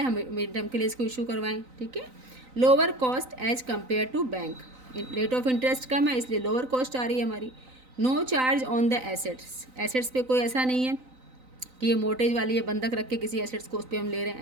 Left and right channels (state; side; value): late; left; 3.9 ms